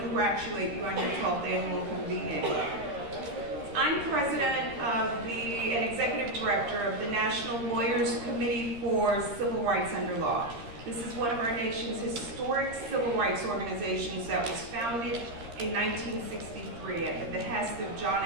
you on your 12th annual convening. I'm president and executive director of the National Lawyers Committee for Civil Rights Under Law. This is one of our nation's historic civil rights organizations that was founded in 1963 at the behest of John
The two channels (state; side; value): late; left; 13 ms